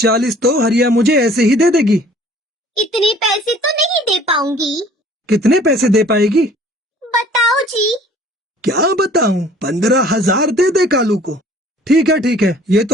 तो हरिया मुझे ऐसे ही दे देगी। इतने पैसे तो नहीं दे पाऊंगी। कितने पैसे दे पाएगी? बताओ जी। क्या बताऊं, 15,000 दे दे कालू को। ठीक है, ये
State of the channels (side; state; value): both; normal; correlation 0.53